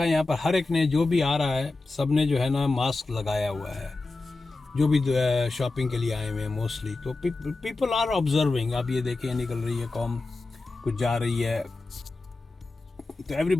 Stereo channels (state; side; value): quieter; right; 3.4 dB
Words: यहाँ पर हर एक ने, जो भी आ रहा है, सब ने जो है ना मास्क लगाया हुआ है, जो भी शॉपिंग के लिए आए हुए हैं मोस्टली। तो पीपल आर ऑब्जर्विंग। आप ये देखें, निकल रही है कौम, कुछ जा रही है, तो